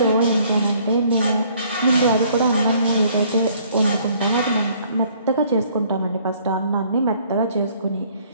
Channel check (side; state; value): both; inverted; correlation -0.60